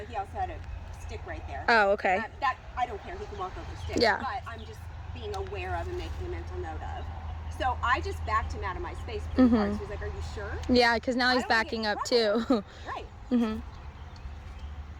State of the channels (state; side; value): identical; both; correlation 1.00